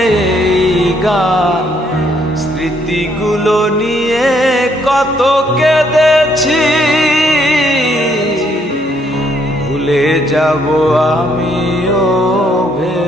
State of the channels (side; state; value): both; normal; correlation 0.70